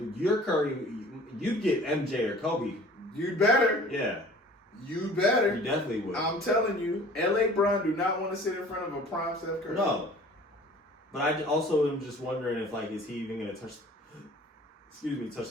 your Curry, you'd get MJ or Kobe. You better. Yeah, You better. you definitely would. I'm telling you, LA Bron do not want to sit in front of a prime Steph Curry. No. But I also am just wondering if, like, is he even going to touch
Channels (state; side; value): normal; both; correlation 0.48